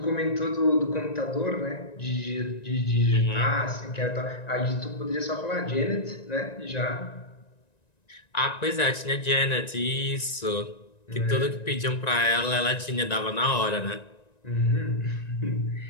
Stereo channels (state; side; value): late; right; 1.9 ms